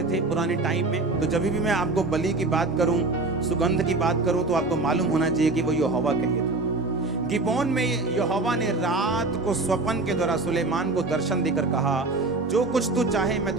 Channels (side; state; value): left; quieter; 3.3 dB